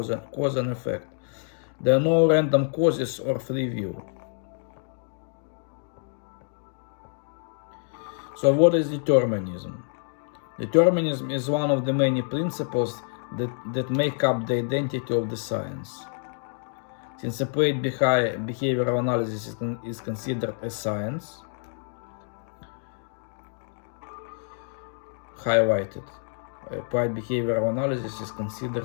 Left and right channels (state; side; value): silent; right; 57 dB below the other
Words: and effect. There are no random causes or free will. So what is determinism? Determinism is one of the many principles that make up the identity of the science. Since applied behavioral analysis is considered a science, highlighted, applied behavioral analysis is